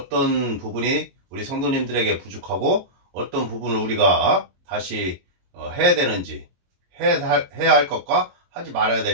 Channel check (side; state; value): left; late; 22 ms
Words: 부분이 우리 성도님들에게 부족하고 어떤 부분을 우리가 다시 해야 되는지, 해야 할 것과 하지 말아야